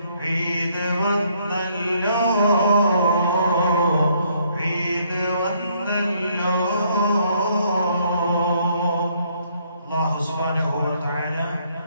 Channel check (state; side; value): inverted; both; correlation -0.68